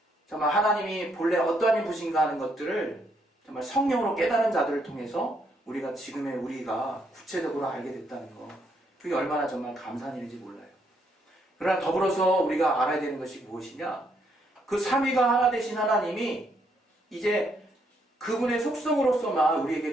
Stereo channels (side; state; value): both; normal; correlation 0.73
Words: 하나님이 본래 어떠한 분이신가 하는 것들을 정말 성령으로 깨달은 자들을 통해서 우리가 지금의 우리가 구체적으로 알게 됐다는 거, 그게 얼마나 정말 감사한 일인지 몰라요. 그러나 더불어서 우리가 알아야 되는 것이 무엇이냐? 그 삼위가 하나 되신 하나님이 이제 그분의 속성으로서만 우리에게